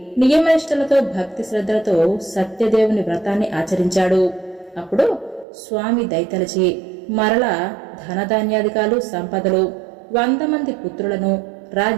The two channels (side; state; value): left; drops out; at 5.5 s